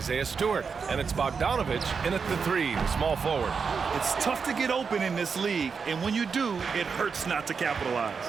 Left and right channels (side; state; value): left; quieter; 5.6 dB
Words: Stewart. And it's Bogdanovich in at the 3, the small forward. It's tough to get open in this league, and when you do, it hurts not to capitalize.